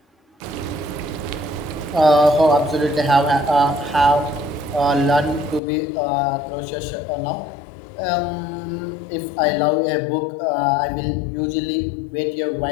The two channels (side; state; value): right; drops out; at 5.6 s